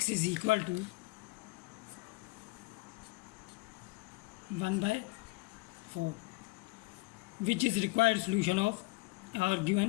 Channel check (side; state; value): right; quieter; 23.8 dB